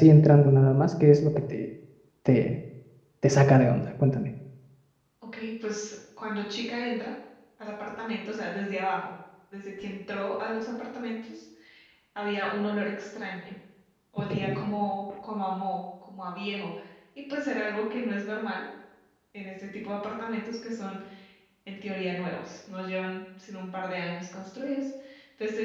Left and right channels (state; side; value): identical; both; correlation 1.00